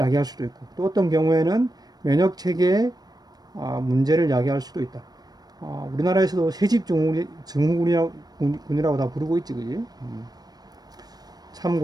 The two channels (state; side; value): late; left; 0.19 ms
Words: 수도 있고, 또 어떤 경우에는 면역 체계의 문제를 야기할 수도 있다. 우리나라에서도 새집 증후군이라고 다 부르고 있지, 그지?